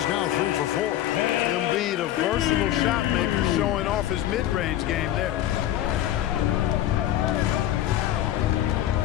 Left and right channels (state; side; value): quieter; right; 12.7 dB